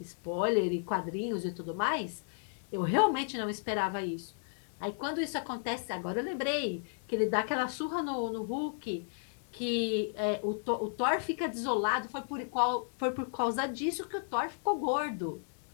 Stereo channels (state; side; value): silent; right; digital silence